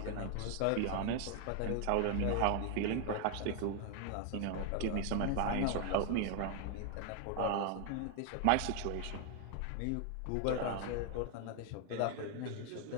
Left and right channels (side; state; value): both; different; correlation 0.00